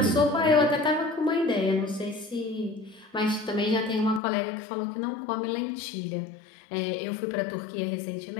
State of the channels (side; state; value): right; drops out; at 4.2 s